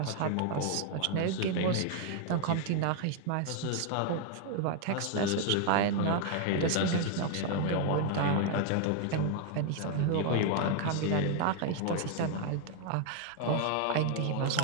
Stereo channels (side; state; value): both; different; correlation 0.00